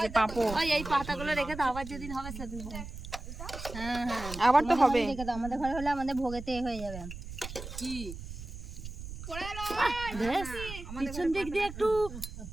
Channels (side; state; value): right; noise; rumble, 10 dB below the sound